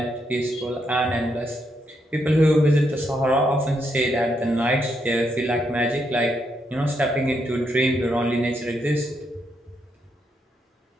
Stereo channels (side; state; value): both; normal; correlation 0.79